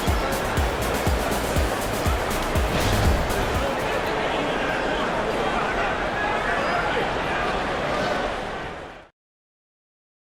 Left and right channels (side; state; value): both; identical; correlation 1.00